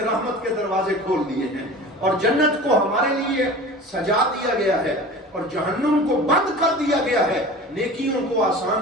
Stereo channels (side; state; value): both; normal; correlation 0.37